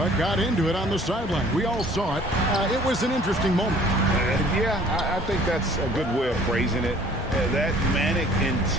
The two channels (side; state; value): both; normal; correlation 0.54